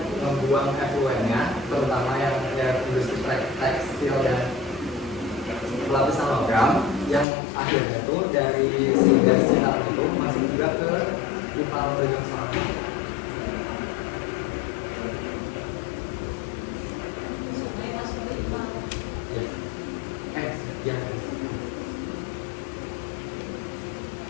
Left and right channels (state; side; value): drops out; right; at 7.2 s